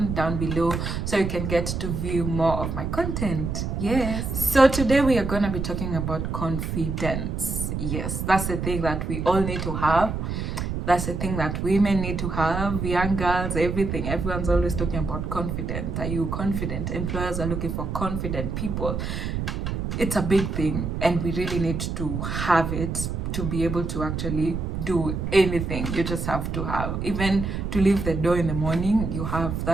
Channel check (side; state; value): right; noise; rumble, 3 dB below the sound